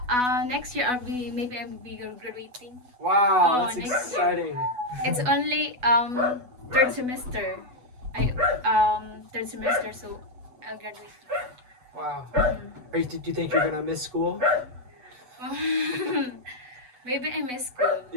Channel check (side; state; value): left; late; 8.1 ms